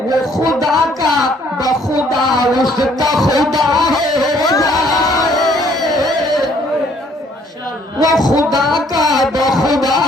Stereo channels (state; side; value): normal; both; correlation 0.63